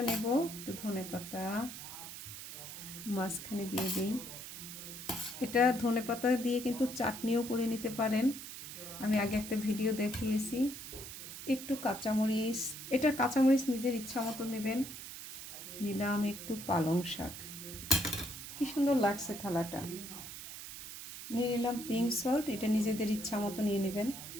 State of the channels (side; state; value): right; noise; hiss, 10 dB below the sound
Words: নেব একটু ধনেপাতা মাঝখানে দিয়ে দিই। এটা ধনেপাতা দিয়ে কিন্তু চাটনিও করে নিতে পারেন, আমি আগে একটা ভিডিও দেখিয়েছি। একটু কাঁচামরিচ, এটা কাঁচামরিচ নিজের ইচ্ছা মতো নেবেন। নিলাম একটু পালং শাক, কি সুন্দর লাগছে থালাটা। নিয়ে নিলাম পিঙ্ক সল্ট, এটা নিজেদের ইচ্ছা মতো নিয়ে নেবেন।